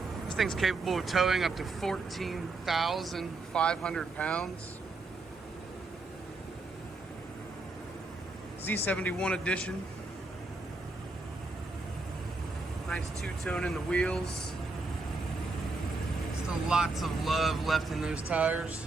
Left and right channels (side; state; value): left; quieter; 3.5 dB